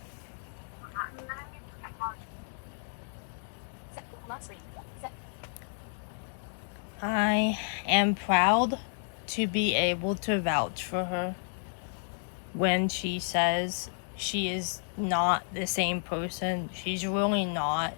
I am proud to be able to vouch for her when she says she is not the same person. She's really not.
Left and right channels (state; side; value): silent; right; 57 dB below the other